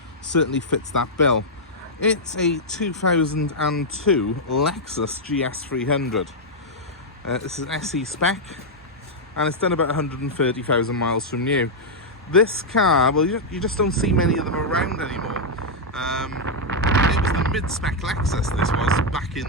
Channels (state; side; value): normal; both; correlation -0.04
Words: certainly fits that bill. It's a 2002 Lexus GS300. This is an SE spec, and it's done about 130,000 miles from new. This car, well, you just don't see many of them around anymore. It was the mid-spec Lexus, this was, back